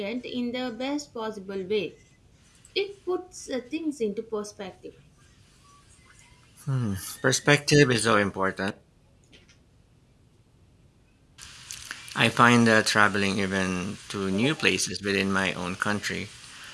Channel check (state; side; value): identical; both; correlation 1.00